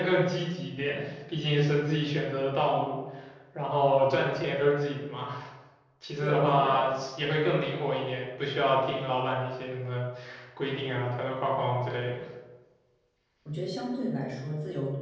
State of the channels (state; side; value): identical; both; correlation 1.00